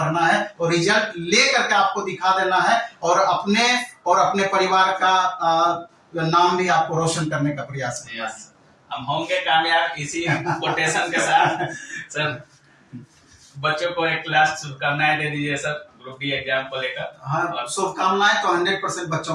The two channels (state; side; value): identical; both; correlation 1.00